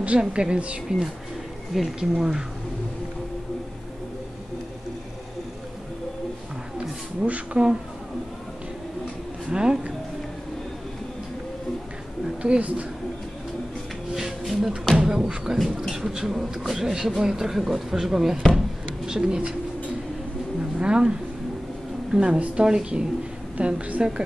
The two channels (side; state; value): both; normal; correlation 0.97